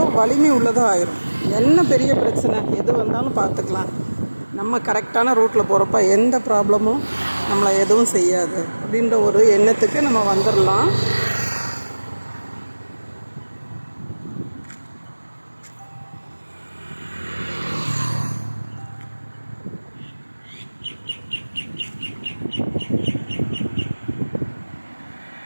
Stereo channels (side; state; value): both; inverted; correlation -1.00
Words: வலிமை உள்ளதாக ஆயிரும். என்ன பெரிய பிரச்சனை எது வந்தாலும் பார்த்துக்கலாம், நம்ம கரெக்டான ரூட்டில் போகிறப்ப எந்த ப்ராப்ளமும் நம்மளை எதுவும் செய்யாது அப்படின்ற ஒரு எண்ணத்துக்கு நம்ம வந்துடலாம்.